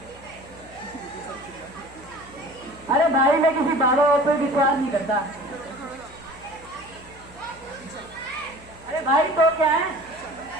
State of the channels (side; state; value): left; noise; hum, 22 dB below the sound